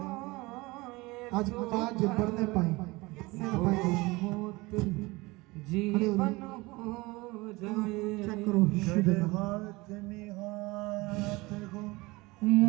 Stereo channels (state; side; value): quieter; left; 22.8 dB